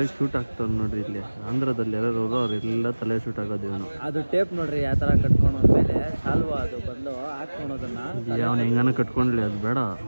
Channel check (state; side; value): inverted; both; correlation -1.00